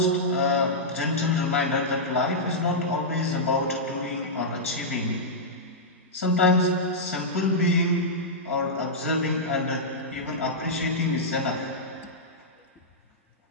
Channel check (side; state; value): both; normal; correlation -0.11